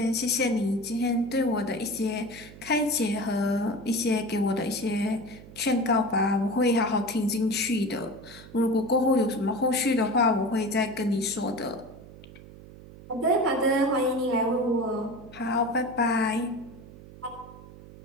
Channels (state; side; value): noise; right; hum, 18 dB below the sound